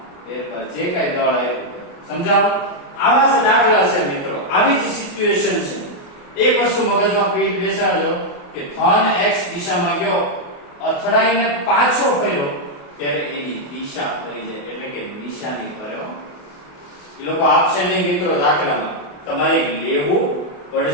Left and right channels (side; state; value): right; late; 28 ms